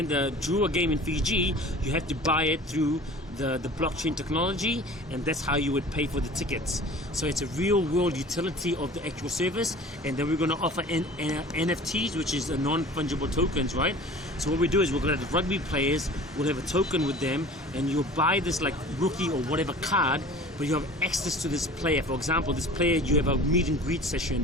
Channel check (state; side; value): normal; both; correlation 0.43